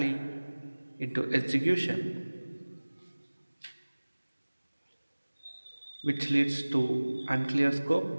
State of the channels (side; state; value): both; inverted; correlation -1.00